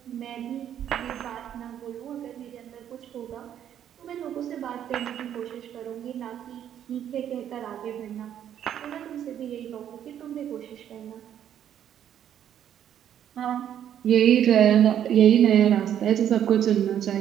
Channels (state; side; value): quieter; left; 10.0 dB